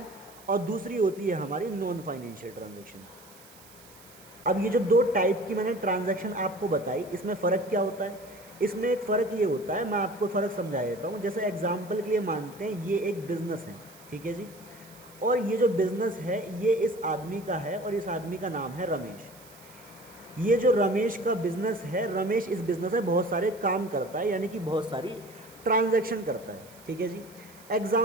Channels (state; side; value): noise; right; hiss, 22 dB below the sound